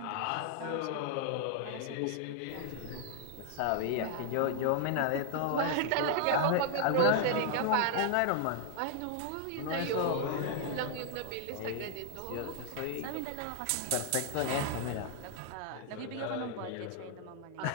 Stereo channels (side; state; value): both; different; correlation 0.00